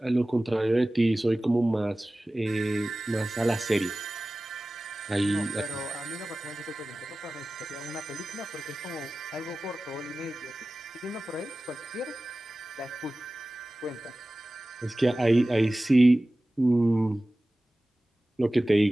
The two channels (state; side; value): normal; both; correlation 0.96